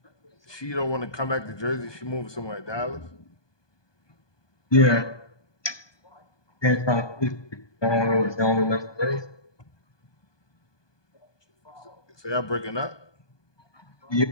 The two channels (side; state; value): right; late; 1.2 ms